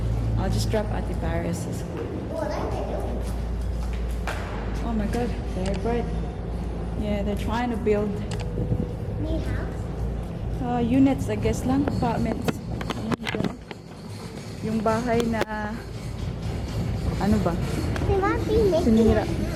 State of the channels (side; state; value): both; identical; correlation 1.00